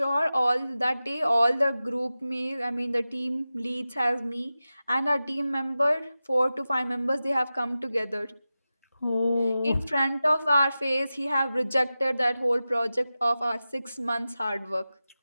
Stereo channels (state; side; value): inverted; both; correlation -0.94